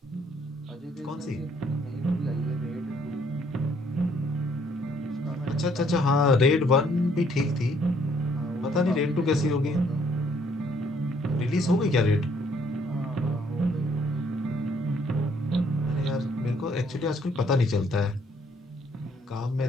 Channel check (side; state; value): both; normal; correlation 0.66